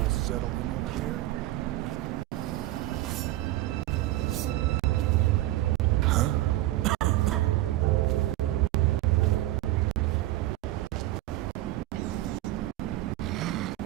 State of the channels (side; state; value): left; quieter; 16.3 dB